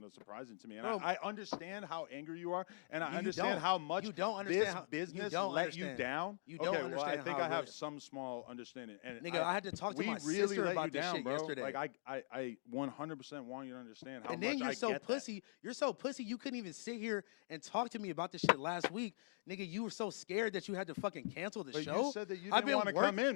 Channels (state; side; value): silent; right; digital silence